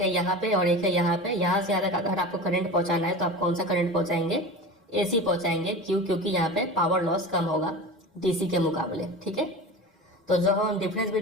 यहाँ पे और एक है यहाँ पे, यहाँ से यहाँ तक अगर आपको करंट पहुँचाना है तो आप कौन सा करंट पहुँचाएंगे, एसी पहुँचाएंगे। क्यों, क्योंकि यहाँ पे पावर लॉस कम होगा डीसी के मुकाबले, ठीक है। तो जो हम डिफरेंस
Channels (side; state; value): both; normal; correlation 0.31